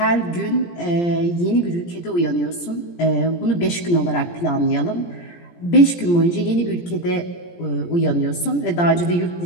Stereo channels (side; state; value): right; late; 17 ms